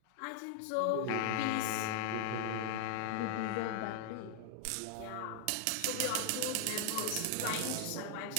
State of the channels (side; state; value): both; different; correlation 0.00